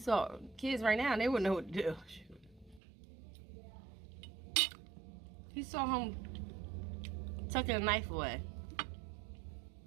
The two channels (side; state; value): left; drops out; at 2.8 s